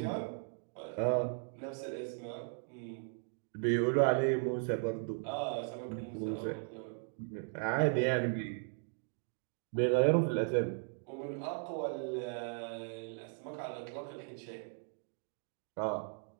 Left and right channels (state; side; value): silent; left; 53 dB below the other